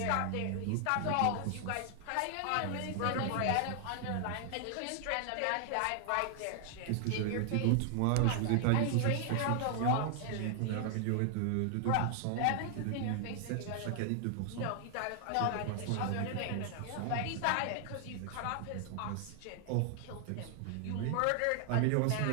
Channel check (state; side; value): different; both; correlation 0.00